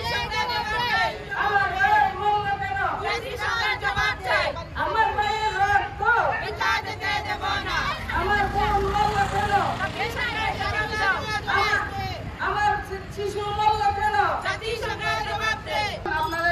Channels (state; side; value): identical; both; correlation 1.00